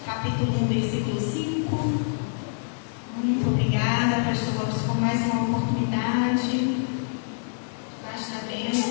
capítulo 1, versículo 5. Muito obrigada, pastor Lopes, por mais uma oportunidade. Basta a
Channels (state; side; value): silent; right; digital silence